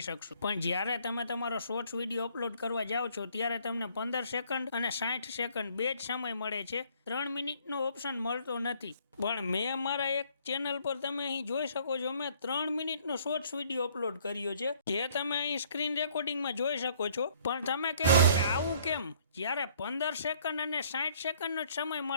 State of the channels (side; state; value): both; inverted; correlation -0.61